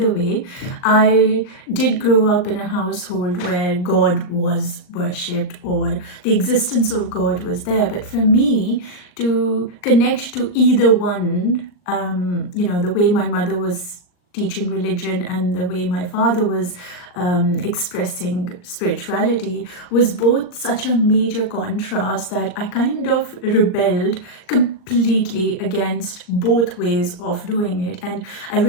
way, I did grow up in a household where God was worshipped or the existence of God was there. But for me to connect to either one, the way my mother was teaching religion and the way my father was expressing spirituality was both such a major contrast that I kind of rebelled completely against both ways of doing it. And I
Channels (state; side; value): late; right; 39 ms